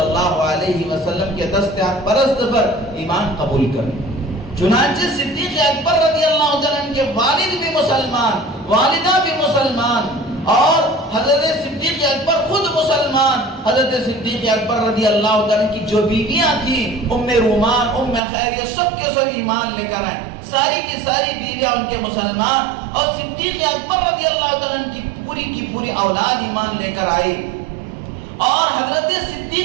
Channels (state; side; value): drops out; left; at 18.2 s